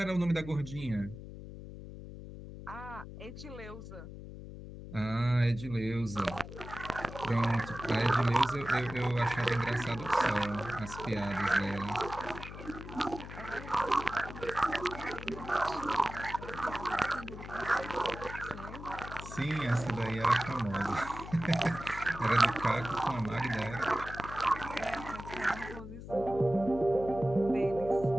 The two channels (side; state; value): left; noise; hum, 12 dB below the sound